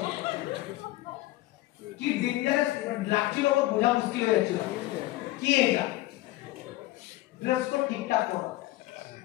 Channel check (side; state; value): right; quieter; 17.8 dB